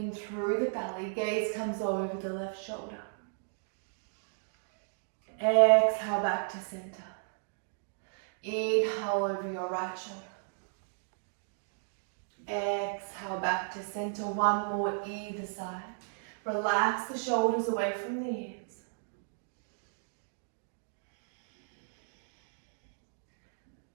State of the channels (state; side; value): silent; left; digital silence